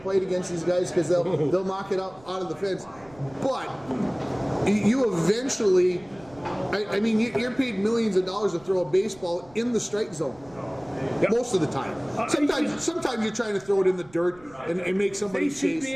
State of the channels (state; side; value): noise; right; rumble, 25 dB below the sound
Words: against these guys because they'll knock it out of the fence, but you eventually, I mean, you're paid millions of dollars to throw a baseball in the strike zone. Yep. Most of the time. Sometimes you're trying to throw it in the dirt and make somebody they should chase. be